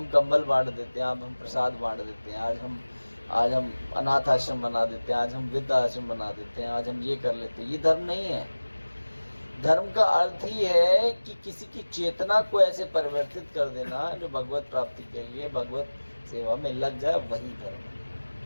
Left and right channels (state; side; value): inverted; both; correlation -1.00